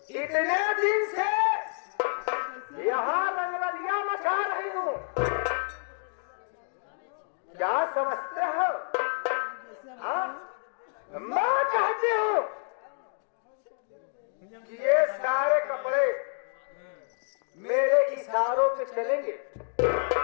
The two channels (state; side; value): silent; right; 55 dB below the other